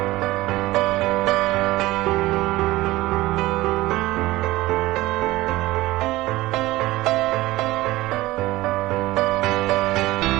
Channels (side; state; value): left; quieter; 18.3 dB